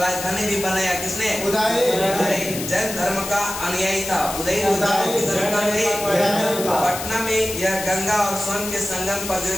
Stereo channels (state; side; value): noise; left; hiss, 7 dB below the sound